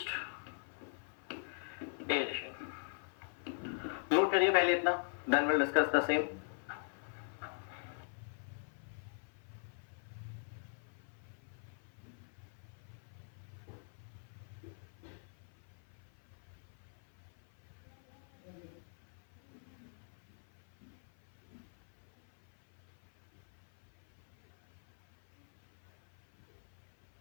aeration। Note करिए पहले इतना, then we'll discuss the same।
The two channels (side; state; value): right; silent; 50 dB below the other